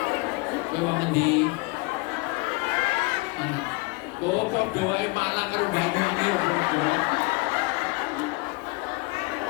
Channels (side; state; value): right; quieter; 26.0 dB